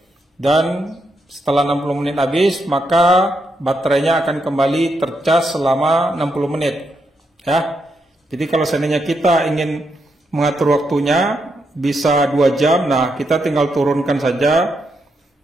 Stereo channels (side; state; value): both; normal; correlation 0.81